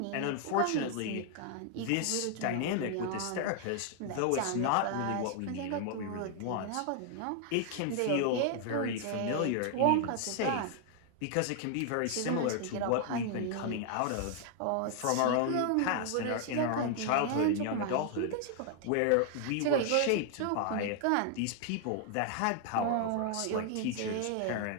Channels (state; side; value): different; both; correlation 0.00